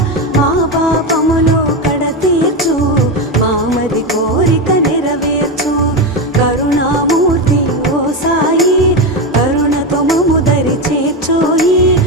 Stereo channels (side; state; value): both; normal; correlation 0.14